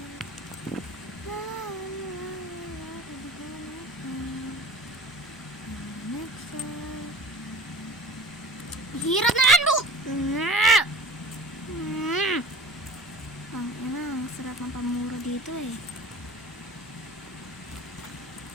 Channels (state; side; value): noise; left; rumble, 28 dB below the sound